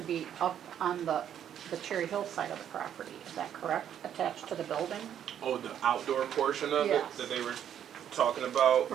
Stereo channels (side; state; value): left; quieter; 9.7 dB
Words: be up on the Cherry Hill side of the property, is that correct? Attached to the building? Oh, the outdoor portion of it Yes. that they were talking about?